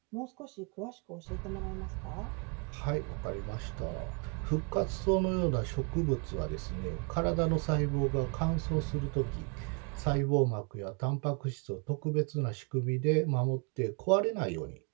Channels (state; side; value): quieter; left; 35.9 dB